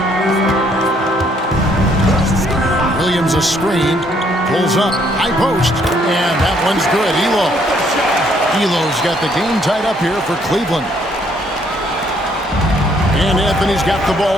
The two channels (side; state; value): both; normal; correlation 0.67